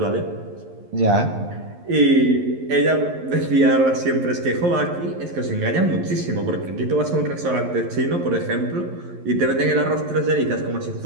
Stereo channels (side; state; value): left; late; 11 ms